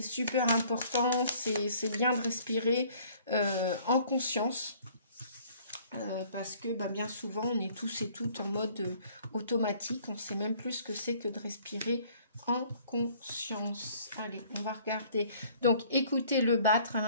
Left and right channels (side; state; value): both; inverted; correlation -0.57